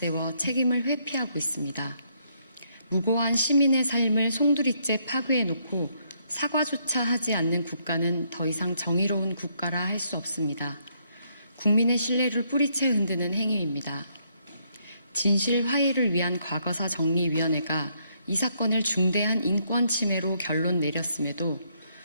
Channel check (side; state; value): both; inverted; correlation -0.72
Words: 책임을 회피하고 있습니다. 무고한 시민의 삶을 송두리째 파괴해놓고 사과조차 하지 않는 국가는 더 이상 정의로운 국가라 할 수 없습니다. 국민의 신뢰를 뿌리채 흔드는 행위입니다. 진실 화해를 위한 과거사 정리위원회가 이 사건을 중대한 인권 침해로 결론 내렸음에도